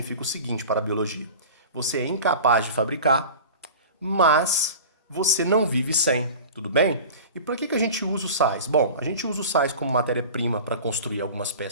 o seguinte para a biologia: você é incapaz de fabricar, mas você não vive sem, tudo bem? E para que a gente usa os sais? Bom, a gente usa os sais como matéria-prima para construir algumas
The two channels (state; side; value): inverted; both; correlation -0.36